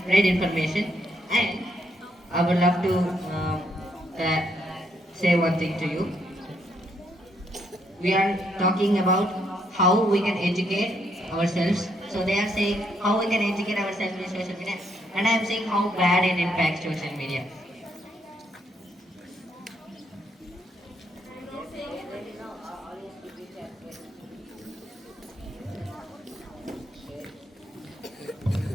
spread information. And I would love to uh, say one thing to you. We are talking about how we can educate ourselves. So they are saying how we can educate ourselves with social media, and I am saying how bad it impacts social media.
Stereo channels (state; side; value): normal; both; correlation 0.74